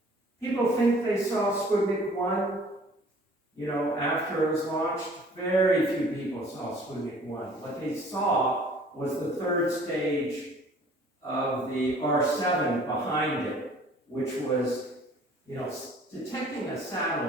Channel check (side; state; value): both; normal; correlation 0.52